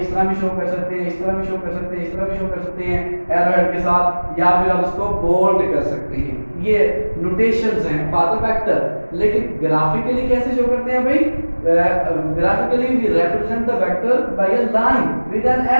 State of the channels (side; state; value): both; inverted; correlation -1.00